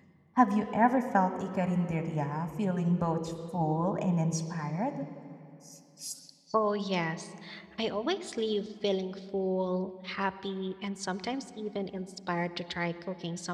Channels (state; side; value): identical; both; correlation 1.00